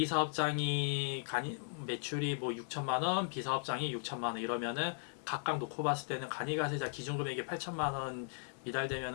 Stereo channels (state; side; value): silent; right; 53 dB below the other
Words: 사업장이 매출이 뭐 6천만 원, B 사업장이 6천만 원 이러면은 각각 놓고 봤을 때는 간이 과세자 기준금액이 8천만 원